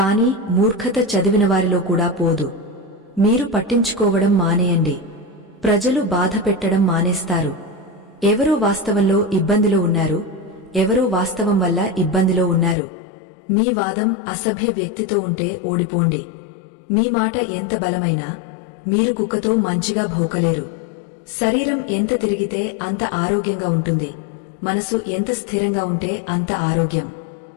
మూర్ఖత చదివినవారిలో కూడా పోదు. మీరు పట్టించుకోవడం మానేయండి. ప్రజలు బాధ పెట్టడం మానేస్తారు. ఎవరో వాస్తవంలో ఇబ్బందిలో ఉన్నారు, ఎవరో వాస్తవం వల్ల ఇబ్బందిలో ఉన్నారు. మీ వాదం అసభ్య వ్యక్తితో ఉంటే ఓడిపోండి. మీ మాట ఎంత బలమైనా మీరు కుక్కతో మంచిగా భౌకలేరు. శరీరం ఎంత తిరిగితే అంత ఆరోగ్యంగా ఉంటుంది, మనసు ఎంత స్థిరంగా ఉంటే అంత ఆరోగ్యం.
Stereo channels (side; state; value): right; drops out; at 12.8 s